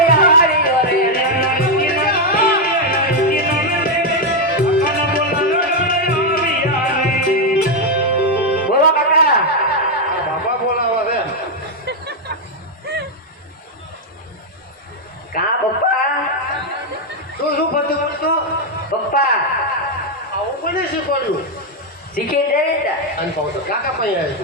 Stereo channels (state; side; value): normal; both; correlation 0.02